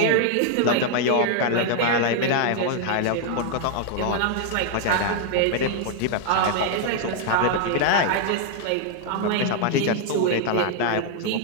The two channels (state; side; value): different; both; correlation 0.00